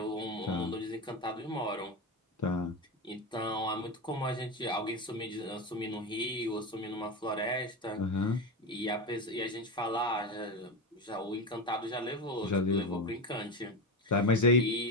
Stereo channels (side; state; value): both; normal; correlation 0.19